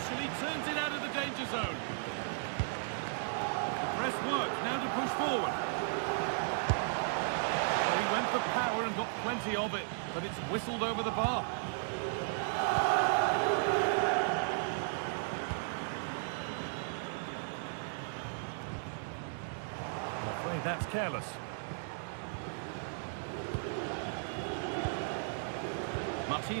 turns it out of the danger zone. The press work, now to push forward. Well, he went for power and got plenty of it, but it's whistled over the bar. I'm afraid that's careless.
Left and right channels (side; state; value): left; silent; digital silence